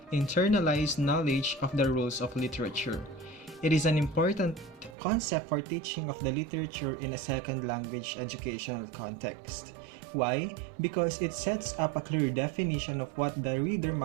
internalized knowledge of the rules of literature. It is an important concept for teaching of the literature in a second language educational context. Why? Because it sets up a clear definition of what the reader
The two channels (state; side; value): drops out; left; at 5.0 s